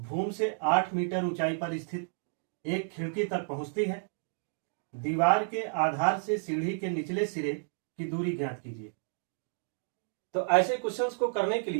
से 8 मीटर ऊंचाई पर स्थित एक खिड़की तक पहुंचती है। दीवार के आधार से सीढ़ी के निचले सिरे की दूरी ज्ञात कीजिए। तो ऐसे क्वेश्चंस को करने के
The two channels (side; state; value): left; silent; digital silence